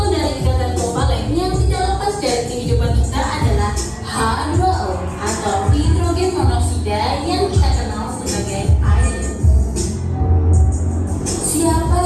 dari ikatan kovalen yang tidak lepas dari kehidupan kita adalah H2O atau hidrogen monoksida yang kita kenal sebagai air. Siapa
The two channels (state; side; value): identical; both; correlation 1.00